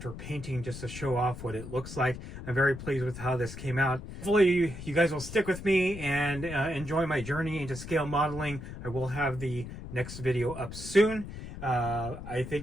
painting, just to show off what it looks like. I'm very pleased with how this came out. Hopefully you guys will stick with me and enjoy my journey into scale modeling. I will have the next video up soon. I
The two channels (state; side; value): noise; left; rumble, 11 dB below the sound